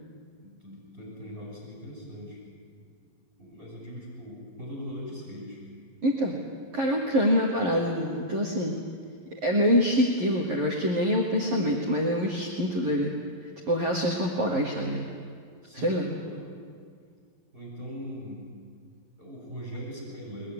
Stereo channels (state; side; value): late; left; 11 ms